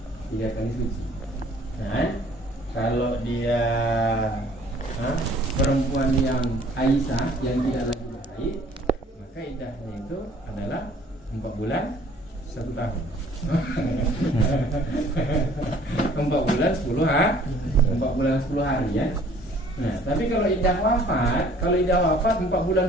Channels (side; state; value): both; normal; correlation 0.56